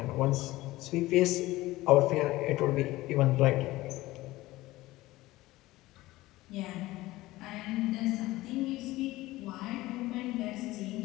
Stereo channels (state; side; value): quieter; right; 18.1 dB